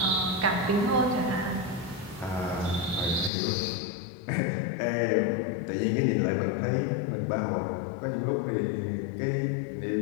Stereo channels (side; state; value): right; drops out; at 3.3 s